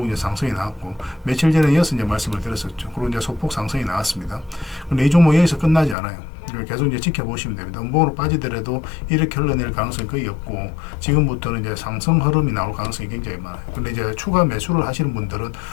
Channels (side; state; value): right; drops out; at 6.0 s